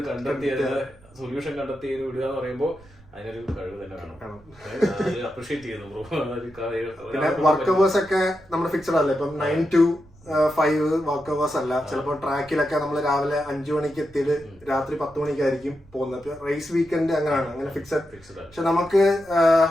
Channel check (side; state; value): right; noise; rumble, 25 dB below the sound